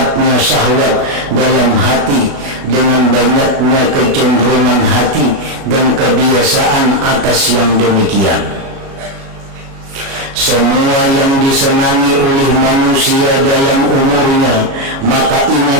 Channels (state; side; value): late; left; 36 ms